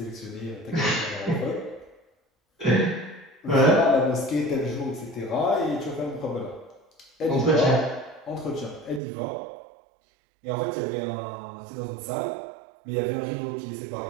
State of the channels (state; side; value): drops out; left; at 9.0 s